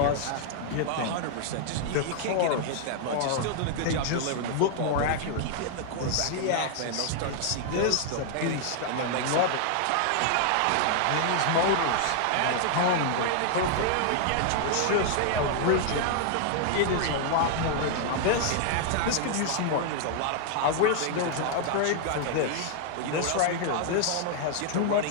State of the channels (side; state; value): both; different; correlation 0.00